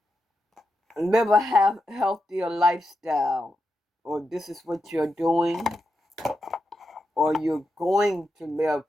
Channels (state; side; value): normal; both; correlation 0.87